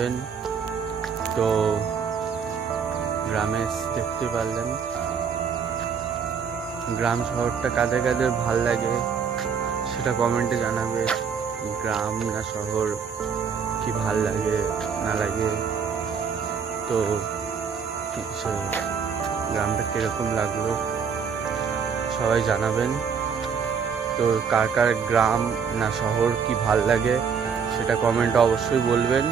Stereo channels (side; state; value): left; quieter; 6.5 dB